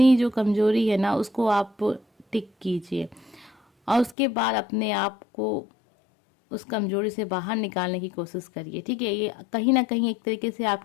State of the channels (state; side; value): drops out; right; at 4.2 s